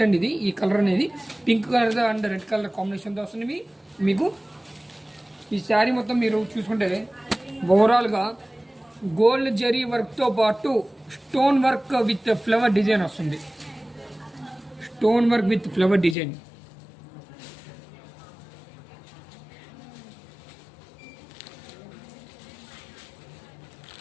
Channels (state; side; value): drops out; right; at 16.2 s